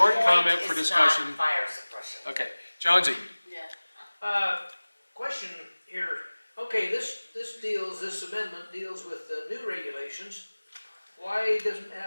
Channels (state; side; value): inverted; both; correlation -1.00